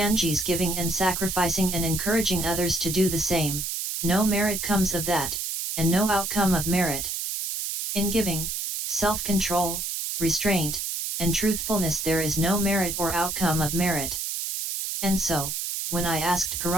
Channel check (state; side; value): noise; right; hiss, 3 dB below the sound